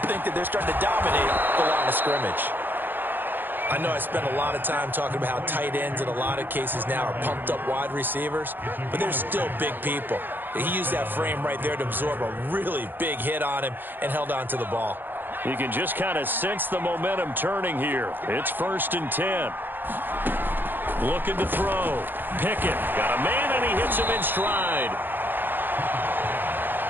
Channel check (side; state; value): left; late; 0.094 ms